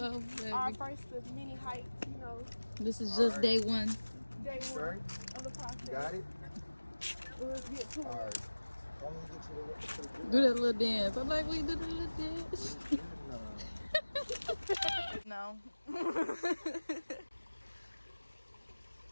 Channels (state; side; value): inverted; both; correlation -1.00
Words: baby. Our first of many heights, you know. This is just day one. Day one of the process. You got it? Let's get to it. All right. I'm gonna get to the Do that little dance. I'm like, we do the little dance. No.